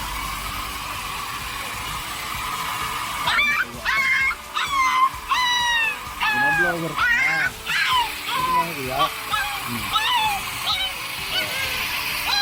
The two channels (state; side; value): identical; both; correlation 1.00